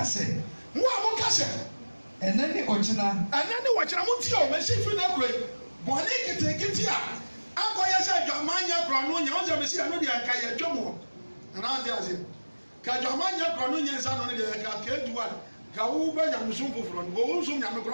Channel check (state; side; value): inverted; both; correlation -1.00